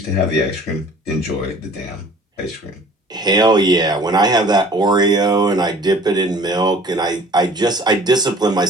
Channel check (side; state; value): both; normal; correlation 0.50